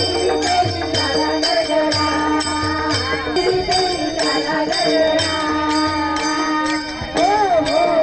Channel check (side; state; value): right; noise; rumble, 22 dB below the sound